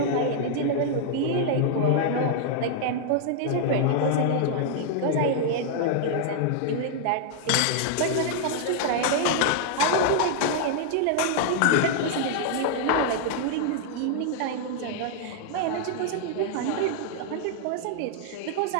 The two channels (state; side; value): different; both; correlation -0.01